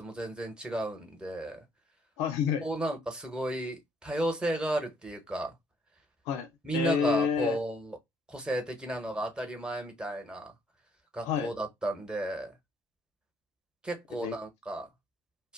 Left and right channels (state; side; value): normal; both; correlation 0.66